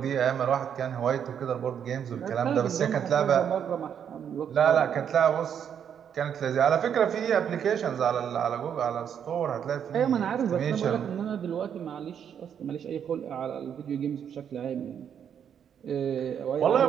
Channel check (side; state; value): left; quieter; 8.4 dB